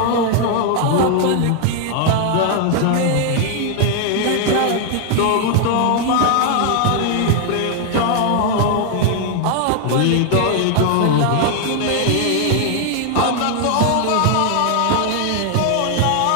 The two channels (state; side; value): different; both; correlation 0.00